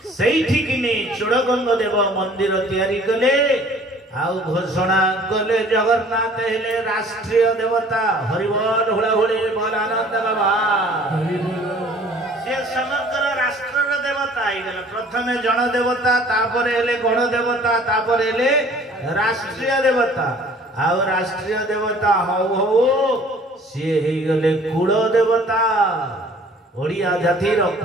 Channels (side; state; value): both; normal; correlation 0.52